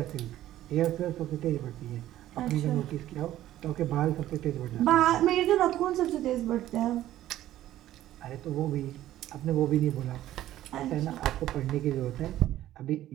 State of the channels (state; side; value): quieter; left; 13.6 dB